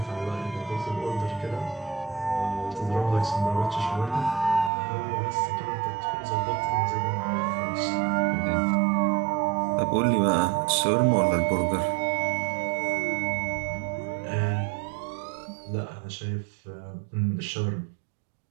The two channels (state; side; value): drops out; left; at 4.7 s